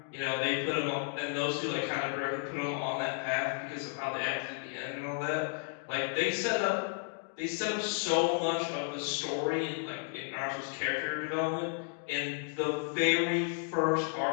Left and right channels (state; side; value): silent; right; 56 dB below the other